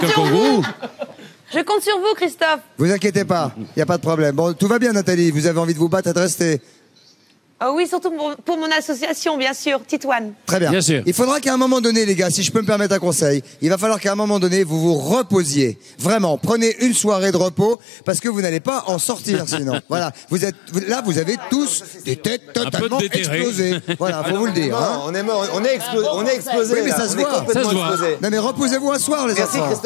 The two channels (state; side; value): drops out; right; at 17.8 s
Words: un sur kangourou. Je compte sur vous, Christophe. Vous inquiétez pas, il n'y a pas de problème. Bon, tout va bien, Nathalie. Vous avez envie de vous battre et de rester. Oh oui, surtout pour mon association, bien sûr, Titouane. Très bien. Bien sûr. Il faudra qu'à un moment donné, les gars, si je peux me permettre un conseil, il va falloir qu'à un moment donné, vous vous reposiez. Vraiment, prenez une soirée de repos parce que vous n'allez pas en sortir sinon. Voilà, vous avez tous des têtes totalement explosées. Voilà, faut vous le dire. Non, on est mort, on est explosé. Oui, mais ça se voit. Ça se voit. Non, mais reposez-vous un soir, les enfants. Merci